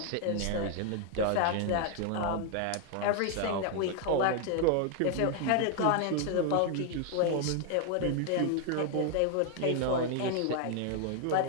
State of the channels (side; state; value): both; different; correlation 0.00